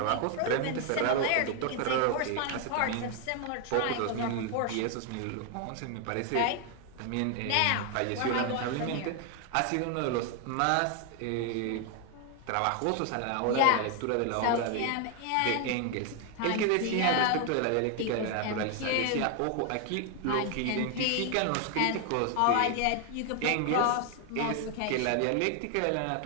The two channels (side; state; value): both; different; correlation 0.01